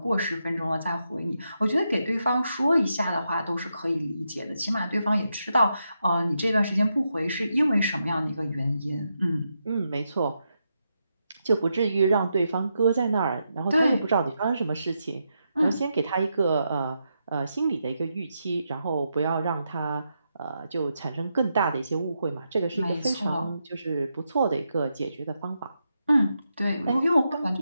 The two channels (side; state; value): both; inverted; correlation -0.84